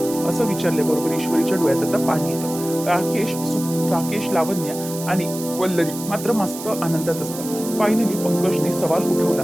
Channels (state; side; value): noise; right; hiss, 11 dB below the sound